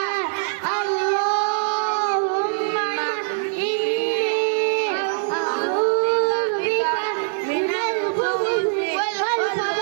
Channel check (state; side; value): silent; left; digital silence